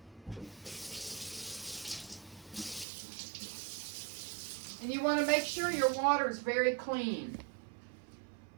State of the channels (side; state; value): left; drops out; at 2.9 s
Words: And you want to make sure your water is very clean.